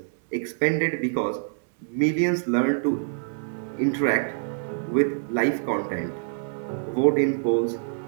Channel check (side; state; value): left; silent; 61 dB below the other